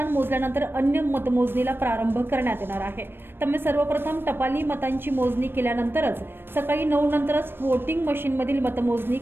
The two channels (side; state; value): left; late; 0.10 ms